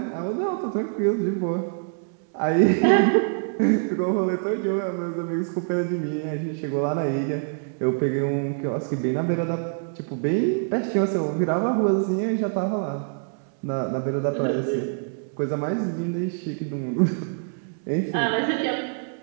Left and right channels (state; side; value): silent; left; 62 dB below the other